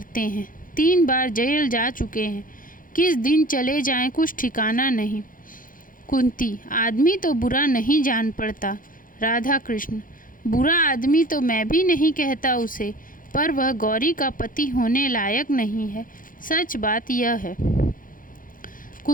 हैं। 3 बार जेल जा चुके हैं। किस दिन चले जाएं कुछ ठिकाना नहीं। कुंती, आदमी तो बुरा नहीं जान पड़ता। राधा कृष्ण, बुरा आदमी तो मैं भी नहीं कहता उसे, पर वह गौरी का पति होने लायक नहीं है। सच बात यह है।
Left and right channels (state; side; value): late; right; 0.40 ms